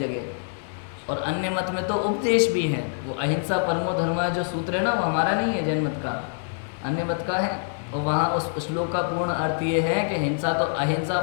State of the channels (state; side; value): silent; right; digital silence